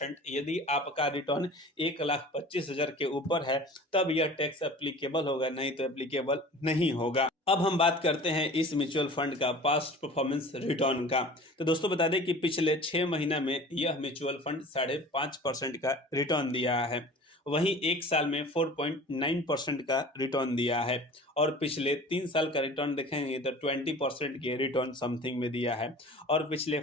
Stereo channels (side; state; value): both; normal; correlation 0.42